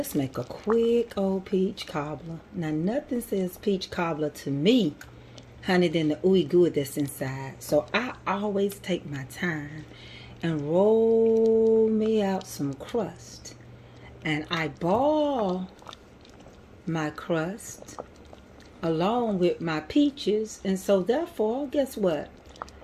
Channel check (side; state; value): both; identical; correlation 1.00